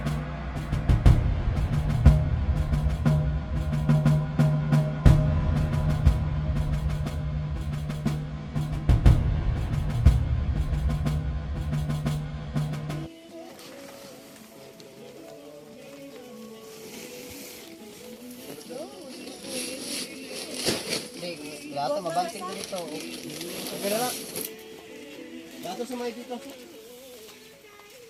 Lahat mabanting dito. Okay na lang. Dato sa may dito.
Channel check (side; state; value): both; identical; correlation 1.00